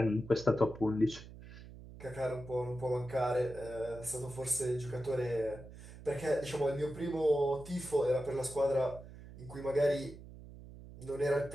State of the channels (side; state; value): right; noise; hum, 16 dB below the sound